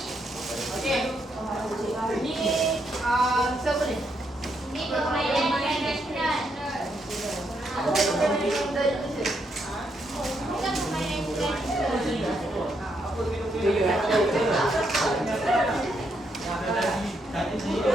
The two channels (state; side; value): normal; both; correlation 0.78